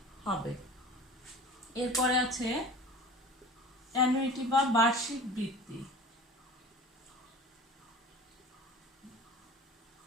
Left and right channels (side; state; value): both; normal; correlation 0.39